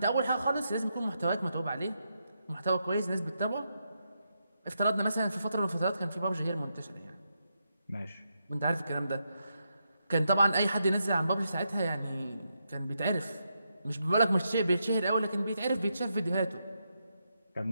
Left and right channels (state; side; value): inverted; both; correlation -0.83